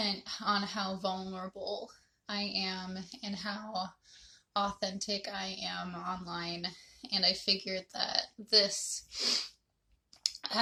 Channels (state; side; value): identical; both; correlation 1.00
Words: on how vulnerable I am and how authentic I am online, and I figured that